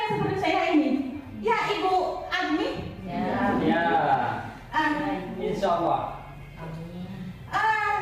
seperti saya ini. Ya, Ibu Agni? Ya. Insya Allah.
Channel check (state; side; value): identical; both; correlation 1.00